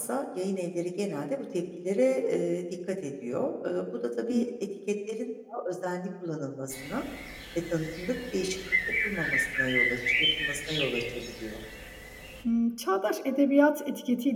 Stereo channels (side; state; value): both; identical; correlation 1.00